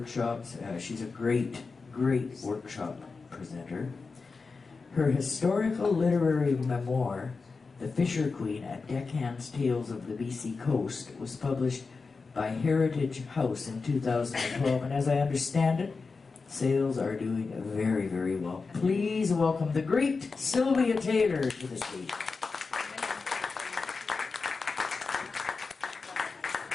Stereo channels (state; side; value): quieter; right; 4.4 dB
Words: She's a great, great workshop presenter. Her historical literary memoir, The Fisher Queen, A Deckhand's Tales of the BC Coast, was published by Heritage House in 2012, and as I understand it, sales are doing very, very well. Please welcome the great Sylvia Taylor to the stage.